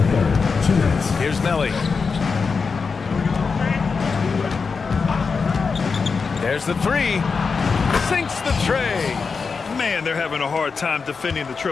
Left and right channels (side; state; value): right; quieter; 5.0 dB